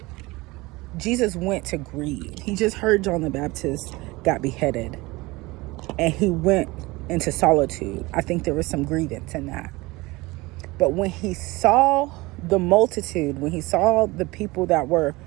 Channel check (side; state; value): left; quieter; 22.2 dB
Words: Jesus went to grieve. He just heard John the Baptist got beheaded, and he went into solitude. I think there was some grievance in that. But when he saw the multitude, when he saw the people that were